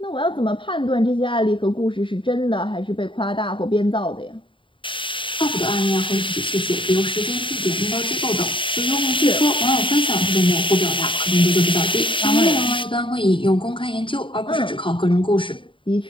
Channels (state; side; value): late; right; 0.25 ms